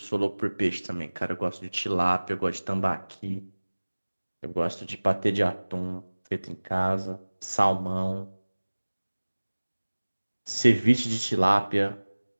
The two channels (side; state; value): both; inverted; correlation -1.00